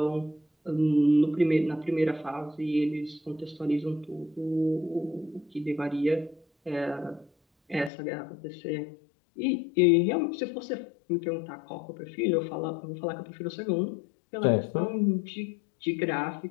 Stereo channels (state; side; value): drops out; right; at 7.9 s